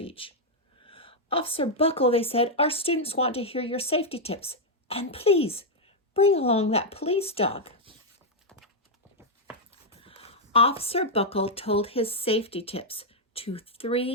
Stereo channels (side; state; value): both; normal; correlation -0.02